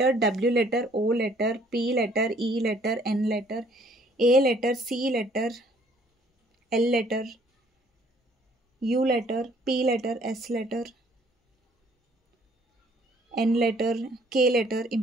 W letter, O letter, P letter, E letter, N letter, A letter, C letter, L letter, U letter, P letter, S letter, N letter, K letter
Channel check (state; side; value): normal; both; correlation 0.61